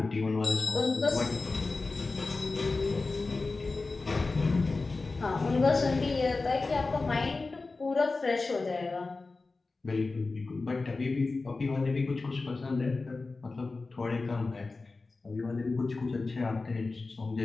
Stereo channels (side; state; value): right; quieter; 3.7 dB